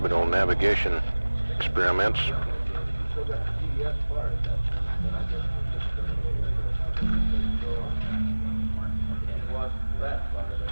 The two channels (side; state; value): both; inverted; correlation -1.00